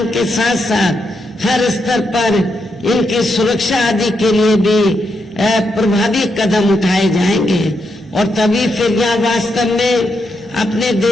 के साथ साथ हर स्तर पर इनकी सुरक्षा आदि के लिए भी प्रभावी कदम उठाए जाएंगे। और तभी फिर यहाँ वास्तव में अपने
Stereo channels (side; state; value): both; normal; correlation 0.82